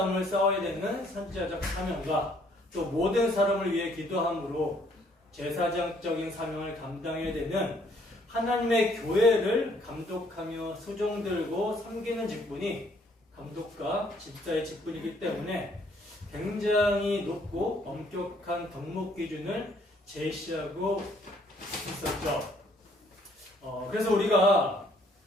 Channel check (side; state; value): both; normal; correlation 0.64